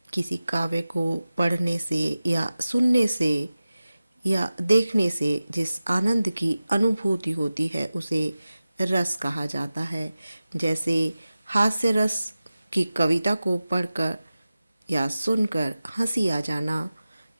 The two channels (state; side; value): inverted; both; correlation -0.96